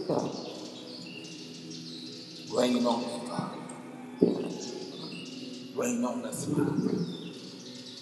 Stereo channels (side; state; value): both; identical; correlation 1.00